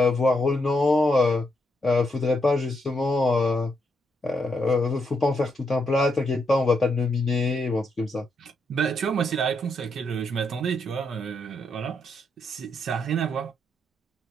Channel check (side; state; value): both; normal; correlation 0.78